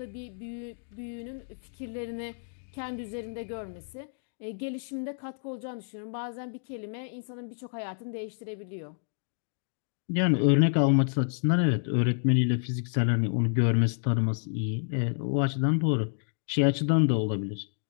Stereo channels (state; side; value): silent; right; digital silence